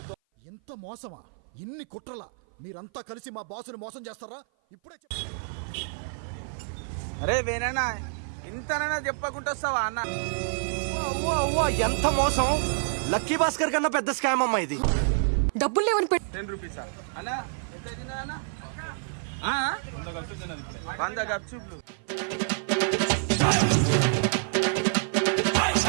ఎంత మోసమా ఇన్ని కుట్రలా మీరంతా కలిసి మా బాసుని మోసం చేస్తారా ఇప్పుడే అరే వేనన్నా ఇంతనైనా చెప్పకుండా వస్తావా అన్న ఎంత మోసం లక్కీ భాస్కర్ కన్నా పెద్ద స్కామ్ అమ్మా ఇది. డబ్బులు లేవని 10 రూపీస్ అన్నా ఎంత తిన్నా 100 గప్చుప్లు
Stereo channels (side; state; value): left; silent; 55 dB below the other